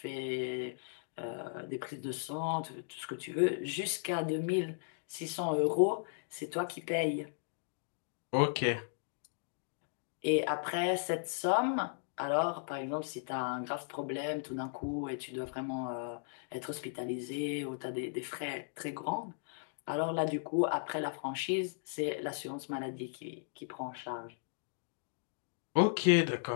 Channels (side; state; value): right; silent; digital silence